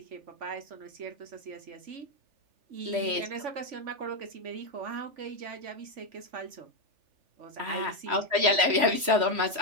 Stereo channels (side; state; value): left; late; 3.1 ms